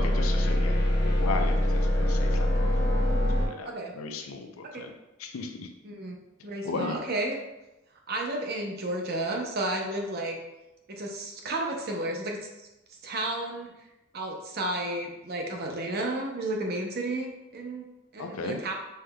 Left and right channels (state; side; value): normal; both; correlation 0.62